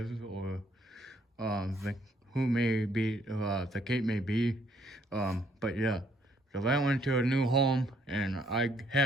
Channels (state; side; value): normal; both; correlation 0.67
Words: or who may be, the case may be. But yeah, so that went to a new home, and I